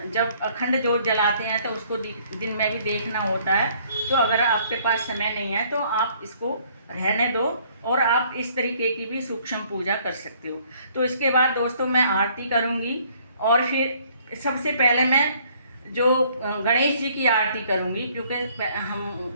जब अखंड जोत जलाते हैं तो उसको दिन में भी देखना होता है, तो अगर आपके पास समय नहीं है तो आप इसको रहने दो, और आप इस तरीके की भी सूक्ष्म पूजा कर सकते हो। तो इसके बाद दोस्तों मैं आरती करूँगी, और फिर सबसे पहले मैं जो गणेश जी की आरती करूँगी, क्योंकि हम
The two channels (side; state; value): both; inverted; correlation -0.62